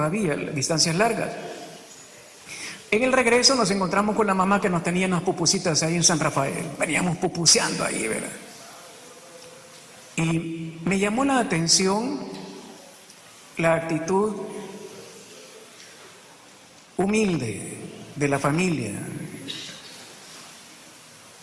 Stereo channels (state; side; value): identical; both; correlation 1.00